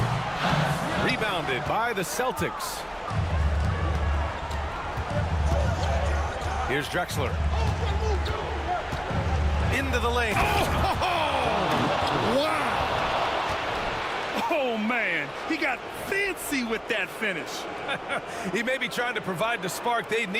Rebounded by the Celtics. Here's Drexler. Into the lane. Wow! Oh, man. He got fancy with that finish. He may be trying to provide the spark they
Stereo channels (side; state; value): both; identical; correlation 1.00